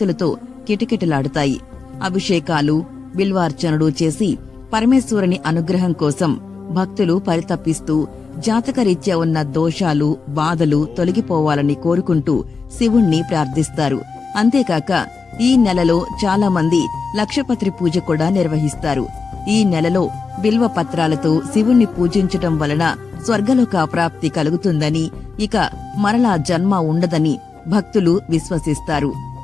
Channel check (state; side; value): quieter; right; 4.8 dB